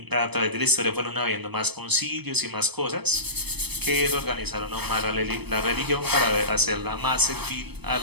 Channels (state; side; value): late; left; 0.97 ms